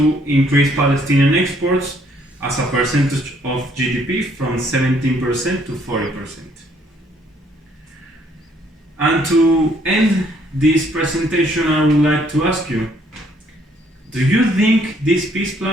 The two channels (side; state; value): both; normal; correlation 0.66